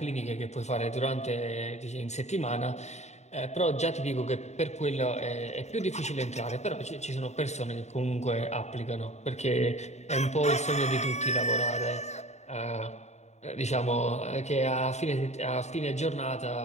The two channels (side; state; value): right; late; 0.32 ms